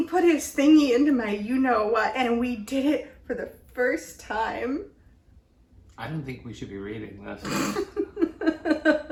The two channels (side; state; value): both; identical; correlation 1.00